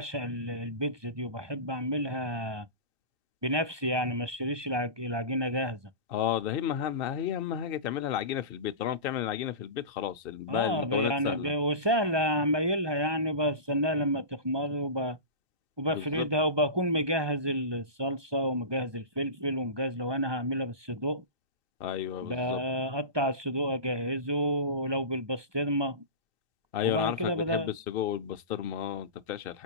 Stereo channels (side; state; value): left; late; 1.2 ms